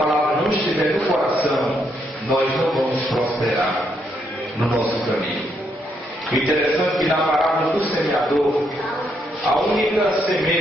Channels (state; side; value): normal; both; correlation 0.76